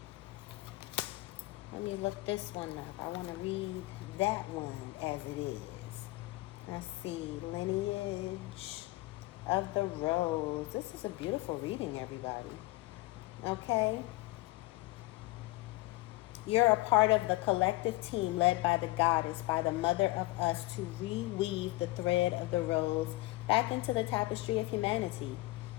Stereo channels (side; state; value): right; quieter; 20.5 dB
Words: Let me look this one up. I want to read that one as it is. Let's see. Lineage of the Rose. This is a beautiful reading, everybody. Okay? You're a part of the collective team led by the goddess, by the mother of us, to reweave the thread of the rose back into the tapestry of humanity,